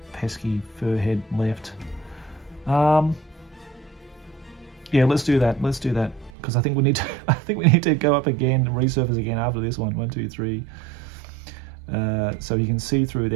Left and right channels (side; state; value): left; drops out; at 6.3 s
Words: pesky fur head left. Yeah, let's do that. Let's do that because I think we need to. I think we need to go up again and resurface again after this one. 1, 2, 3. So you can see through